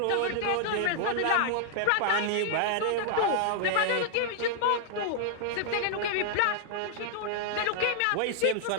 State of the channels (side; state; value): both; different; correlation -0.01